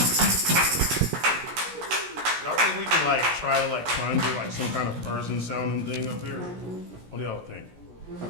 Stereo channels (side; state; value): left; late; 17 ms